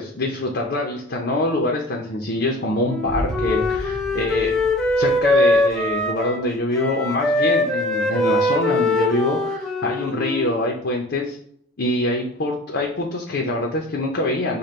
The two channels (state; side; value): normal; both; correlation 0.42